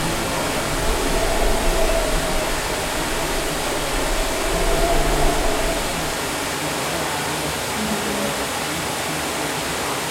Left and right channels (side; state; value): both; identical; correlation 1.00